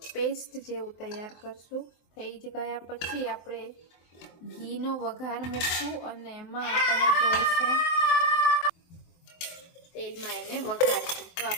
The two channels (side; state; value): right; late; 23 ms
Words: પેસ્ટ જેવું તૈયાર કરશું। થઈ ગયા પછી આપણે ઘીનો વઘાર મૂકશું અને એમાં આપણે જોઈશે તેલમાં એને વઘારશું। તો